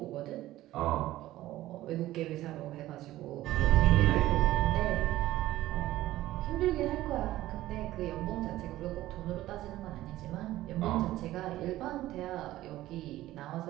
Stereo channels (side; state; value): left; quieter; 15.5 dB